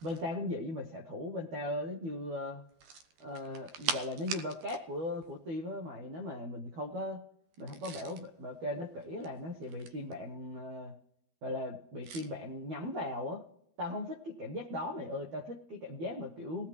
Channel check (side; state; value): left; late; 13 ms